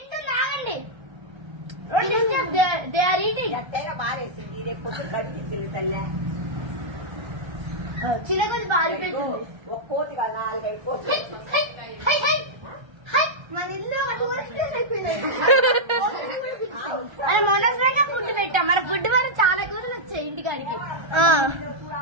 దే ఆర్ ఈటింగ్ ఎట్టైనా బారేసింది రేపు కనిపించింది తల్లే చిన్న కొంచెం పారిపోయింది. ఒక కోతి కాదు 4-5 కోతి మన ఇల్లు మొన్నగా ఫుడ్ పెట్టాం. మన ఫుడ్ వల్ల చాలా కూరలు వచ్చాయి ఇంటికాడికి.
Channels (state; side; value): late; left; 1.3 ms